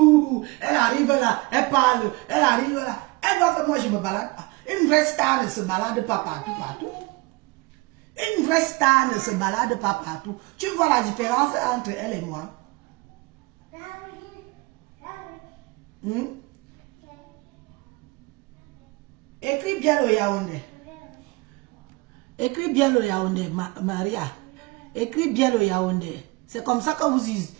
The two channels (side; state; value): left; quieter; 23.8 dB